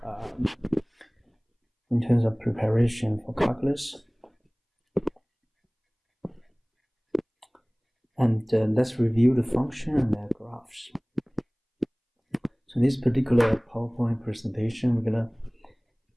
in terms of preparation for calculus. And let's review the function and their graphs. So in this particular PowerPoint presentation, we're going to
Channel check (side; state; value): both; identical; correlation 1.00